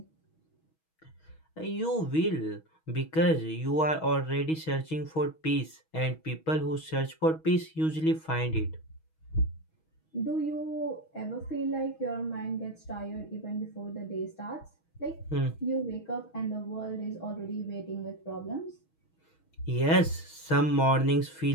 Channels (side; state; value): right; late; 6.3 ms